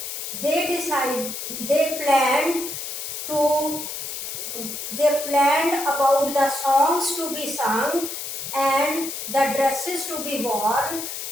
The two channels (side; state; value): left; noise; hiss, 6 dB below the sound